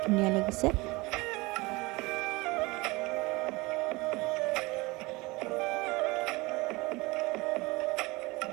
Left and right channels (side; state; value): left; quieter; 23.3 dB